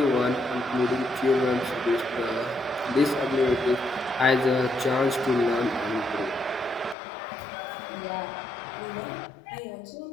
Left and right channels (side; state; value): right; drops out; at 7.0 s